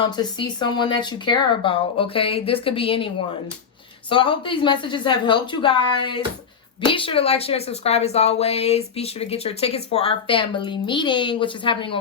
see someone that you care about, okay? This could be anyone. So I hope these messages have helped you guys. Be sure to like, share, and subscribe as always. Be sure to get your tickets for our family meeting, which is happening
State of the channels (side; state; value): right; quieter; 6.5 dB